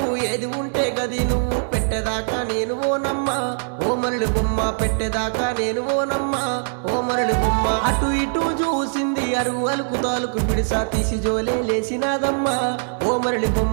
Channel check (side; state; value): left; silent; digital silence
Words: ఏది ఉంటే గది నువ్వు పెట్టేదాకా నేను ఓనమ్మా ఓ మరళి బొమ్మ పెట్టేదాకా నేను ఓనమ్మా ఓ మరళి బొమ్మ. అటు ఇటు చూసింది అరుగు అలుకు తాలుకు పిడిసా తీసి జోలే లేసినాదమ్మా ఓ మరళి